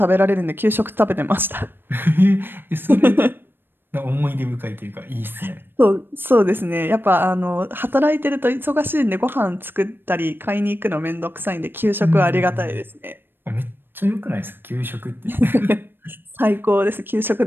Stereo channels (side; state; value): left; late; 0.098 ms